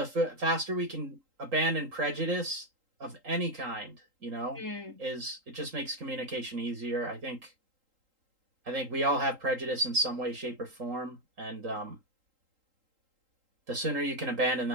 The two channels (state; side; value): late; left; 3.8 ms